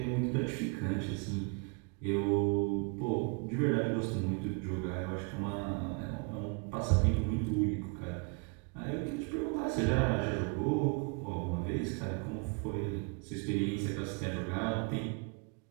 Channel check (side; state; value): left; quieter; 33.2 dB